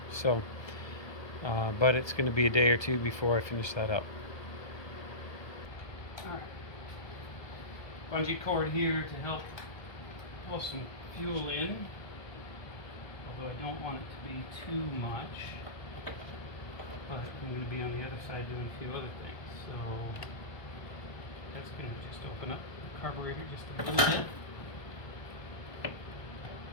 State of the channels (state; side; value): late; right; 1.2 ms